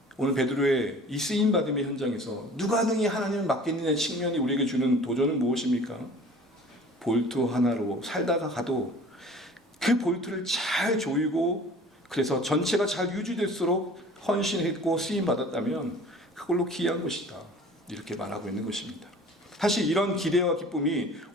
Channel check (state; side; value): normal; both; correlation 0.46